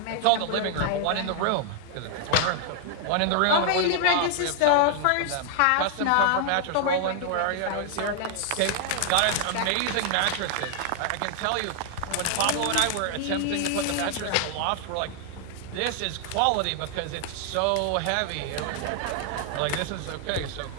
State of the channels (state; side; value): different; both; correlation 0.00